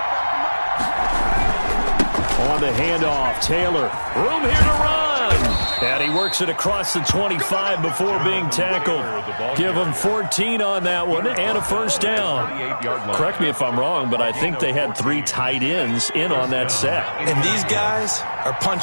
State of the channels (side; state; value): both; inverted; correlation -1.00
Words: On the handoff, Taylor. Room here to run. And he works it across the 25 before being tackled. Give him 14 on that one and a first down. Correct me if I'm wrong, but I think they had 3 tight ends in on that set. And these guys are